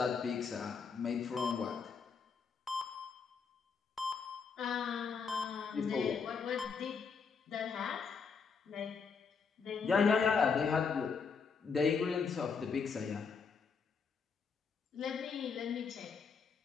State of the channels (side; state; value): right; quieter; 5.6 dB